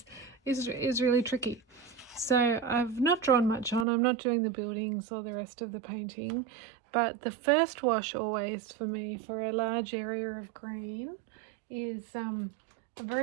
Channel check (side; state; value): left; drops out; at 3.9 s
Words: is really tricky. So I've not drawn much on. I'm not doing the buildings or the rest of the painting, but the first wash always for me for a large area of green is a